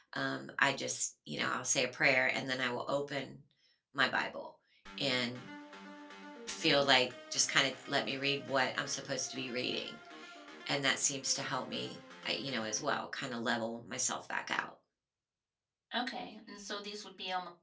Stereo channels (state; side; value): identical; both; correlation 1.00